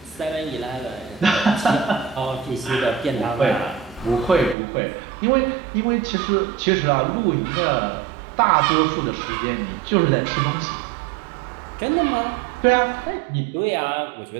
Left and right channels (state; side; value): drops out; left; at 4.5 s